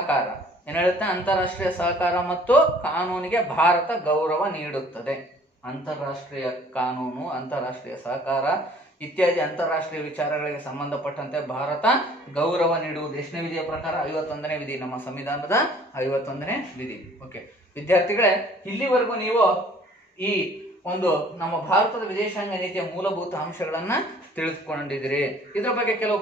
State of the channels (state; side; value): normal; both; correlation 0.54